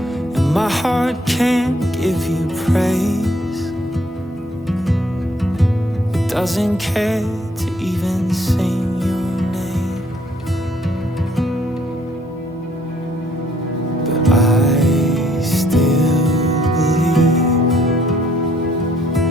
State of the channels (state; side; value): normal; both; correlation 0.65